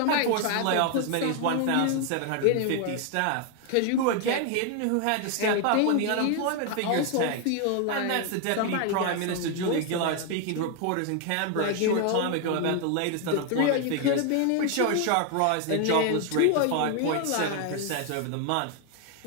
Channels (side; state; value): both; different; correlation 0.00